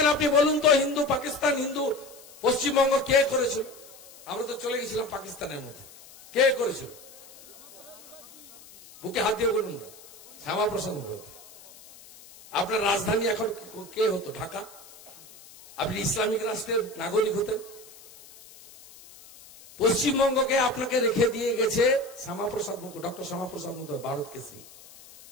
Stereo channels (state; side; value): noise; left; hiss, 21 dB below the sound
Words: আপনি বলুন তো, হিন্দু পাকিস্তান, হিন্দু পশ্চিমবঙ্গ কে করেছিল? আমরা তো চলে গেছিলাম পাকিস্তানের মধ্যে। কে করেছিল? বুকে হাত দিয়ে বলুন না। শ্যামাপ্রসাদ মুখার্জি। আপনার রাজধানী এখন কে হতো? ঢাকা। আপনি ইসলামিক রাষ্ট্রের নাগরিক হতেন। পশ্চিমবঙ্গকে আপনাকে রেখে দিয়ে গেছে শ্যামাপ্রসাদ মুখার্জি, ডক্টর শ্যামাপ্রসাদ মুখার্জি, ভারত কেসরি।